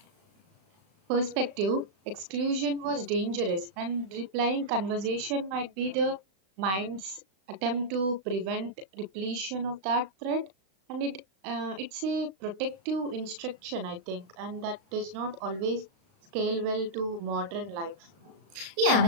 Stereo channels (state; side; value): late; left; 36 ms